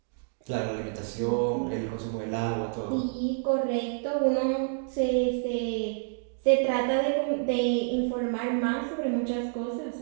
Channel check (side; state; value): left; silent; digital silence